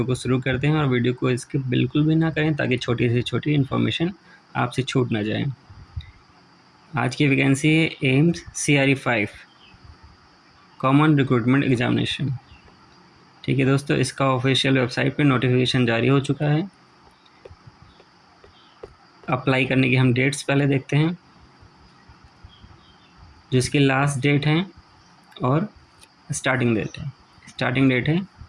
को शुरू करते हैं और वीडियो को स्किप बिल्कुल भी ना करें ताकि छोटी से छोटी इन्फॉर्मेशन आपसे छूट ना जाए। आज की वैकेंसी है AIIMS CRE 5 common recruitment examination. ठीक है दोस्तों, इसका ऑफिशियल वेबसाइट पे नोटिफिकेशन जारी हो चुका है। अप्लाई करने की हम डेट्स पहले देखते हैं, जिसकी लास्ट डेट है और स्टार्टिंग डेट है। स्टार्टिंग डेट है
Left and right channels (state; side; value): identical; both; correlation 1.00